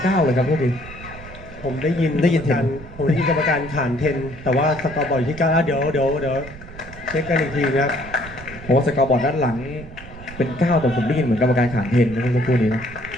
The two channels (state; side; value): noise; right; rumble, 16 dB below the sound